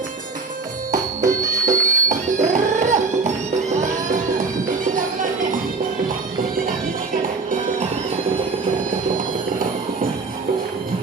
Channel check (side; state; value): left; quieter; 4.2 dB